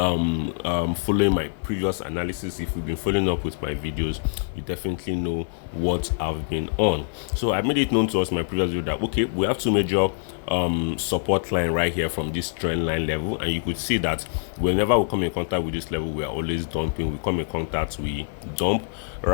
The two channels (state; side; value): silent; right; 62 dB below the other